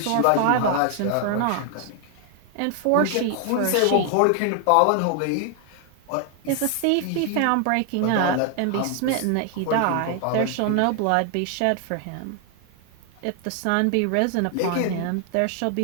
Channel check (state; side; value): different; both; correlation 0.00